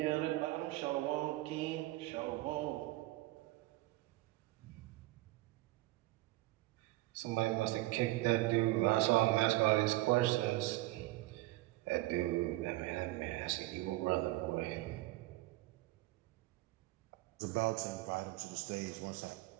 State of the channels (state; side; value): quieter; left; 18.9 dB